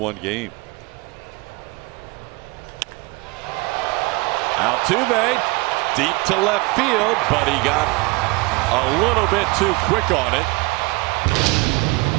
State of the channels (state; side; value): quieter; left; 24.7 dB